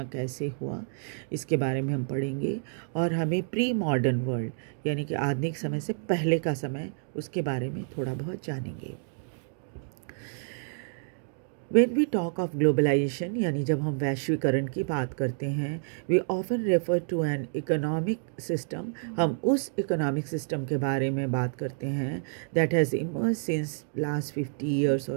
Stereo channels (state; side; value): silent; left; digital silence